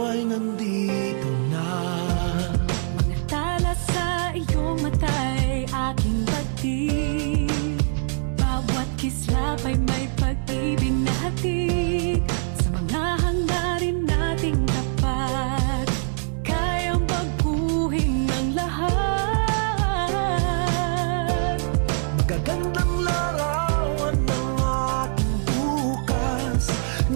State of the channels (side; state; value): left; silent; 63 dB below the other